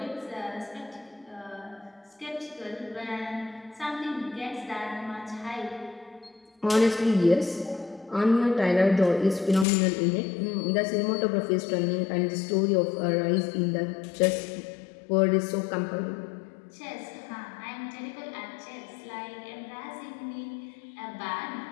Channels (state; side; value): drops out; right; at 9.7 s